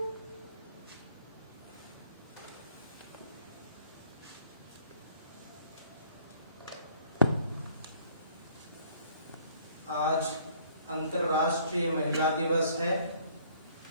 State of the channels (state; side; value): inverted; both; correlation -0.58